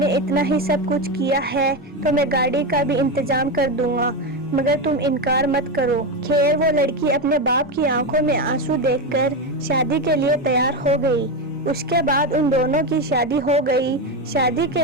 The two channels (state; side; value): normal; both; correlation 0.14